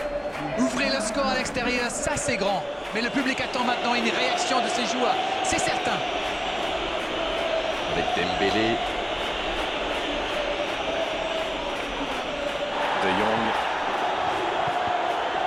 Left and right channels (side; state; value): both; identical; correlation 1.00